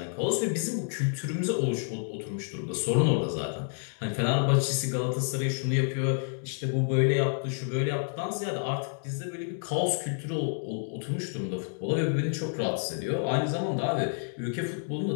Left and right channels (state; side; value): silent; right; digital silence